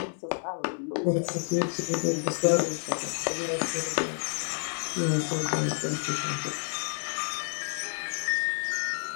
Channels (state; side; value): silent; right; digital silence